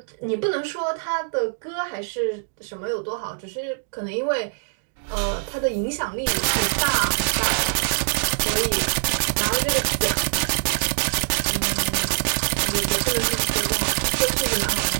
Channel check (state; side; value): silent; left; digital silence